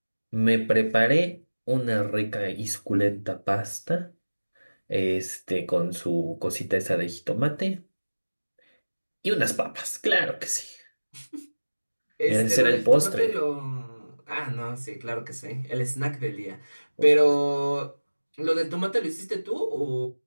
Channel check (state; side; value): inverted; both; correlation -1.00